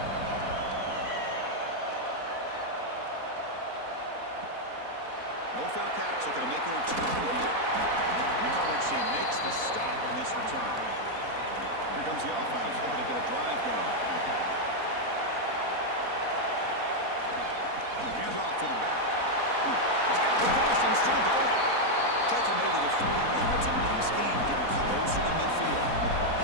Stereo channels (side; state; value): left; late; 4.1 ms